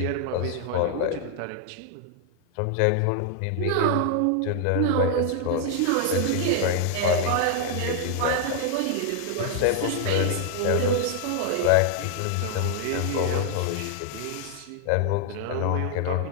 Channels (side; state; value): both; different; correlation 0.00